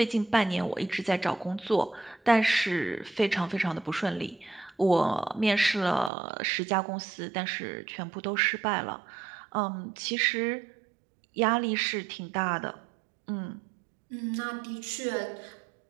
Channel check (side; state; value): left; drops out; at 6.1 s